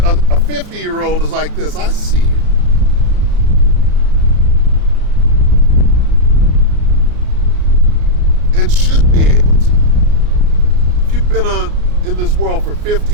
50-year-old is like this. I see you. And should be able to. If you've been in this world for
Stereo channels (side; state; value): left; late; 33 ms